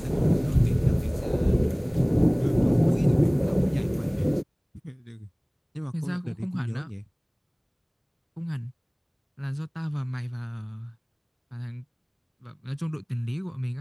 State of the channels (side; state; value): both; identical; correlation 1.00